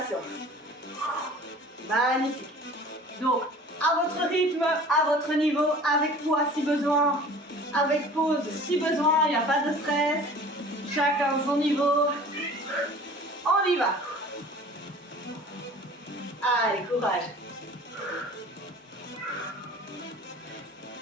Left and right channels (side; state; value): both; normal; correlation 0.45